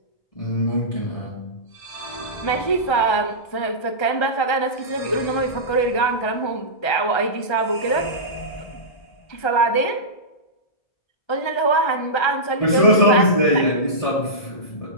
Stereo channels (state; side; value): late; right; 1.3 ms